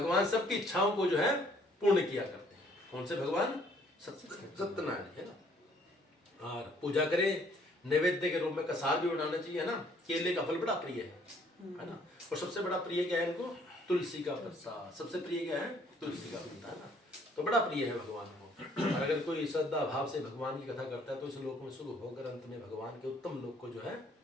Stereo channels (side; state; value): both; normal; correlation 0.62